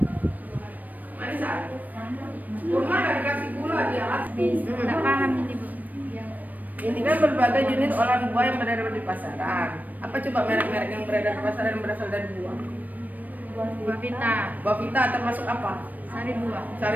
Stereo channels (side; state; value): left; late; 0.082 ms